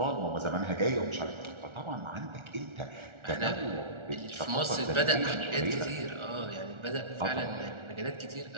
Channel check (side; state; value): left; late; 1.4 ms